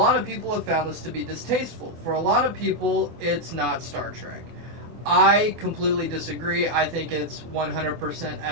of people have found this to be distasteful. For a lot of people, it's not Star Trek. I completely disagree. I think it's 100%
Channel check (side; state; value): left; late; 24 ms